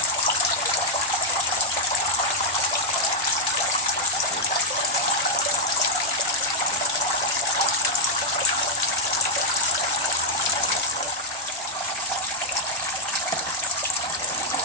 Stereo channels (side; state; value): both; normal; correlation -0.03